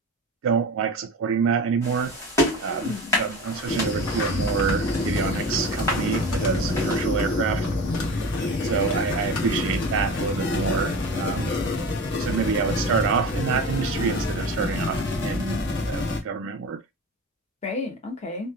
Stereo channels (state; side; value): normal; both; correlation 0.32